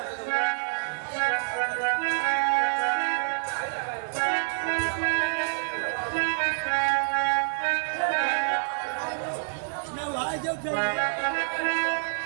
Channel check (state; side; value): silent; left; digital silence